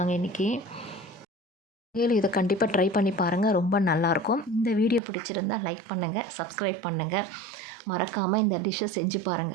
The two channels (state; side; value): drops out; left; at 5.0 s